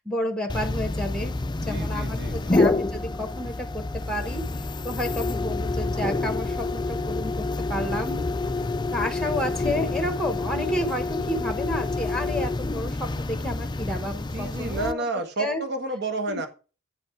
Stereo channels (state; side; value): normal; both; correlation 0.64